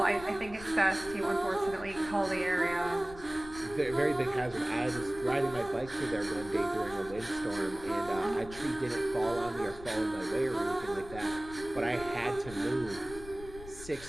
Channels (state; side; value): noise; left; rumble, 16 dB below the sound